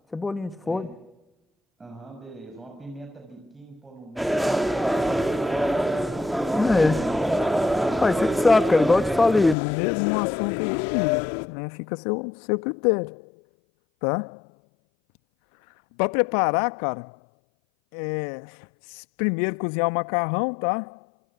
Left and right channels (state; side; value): drops out; right; at 9.6 s